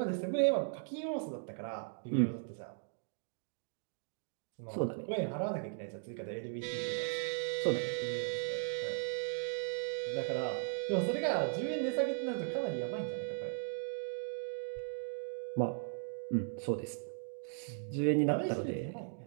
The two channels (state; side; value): silent; left; digital silence